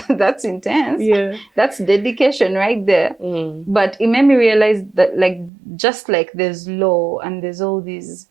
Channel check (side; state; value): left; drops out; at 5.5 s